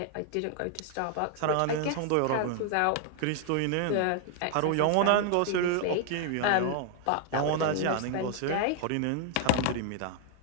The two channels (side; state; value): both; different; correlation 0.00